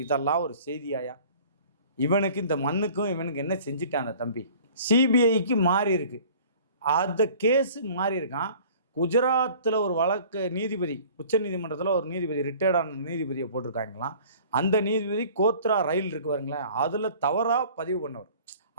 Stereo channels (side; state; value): both; inverted; correlation -0.48